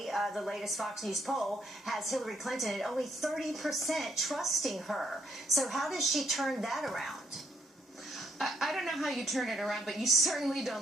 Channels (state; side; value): normal; both; correlation 0.72